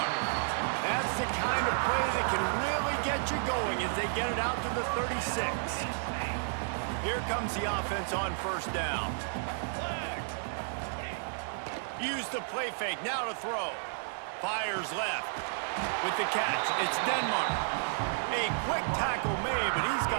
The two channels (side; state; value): left; silent; 56 dB below the other